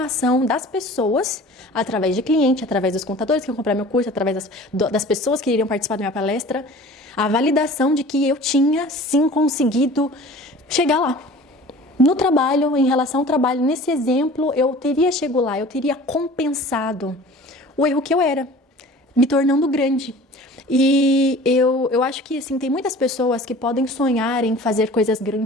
das pessoas, através de cliente, através dos contadores que vão comprar meu curso, através das pessoas que iriam participar da minha palestra, a validação de que eu tinha, sim, conseguido chegar lá. No trabalho, em relação ao trabalho, nesse exemplo, eu teria chegado lá, eu teria compensado o erro que eu era, me tornando grande. E eu acho que, assim, tem muitas pessoas que podem sonhar em fazer coisas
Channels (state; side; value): normal; both; correlation 0.43